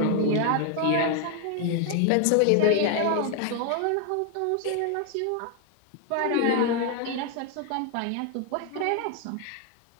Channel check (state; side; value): different; both; correlation 0.01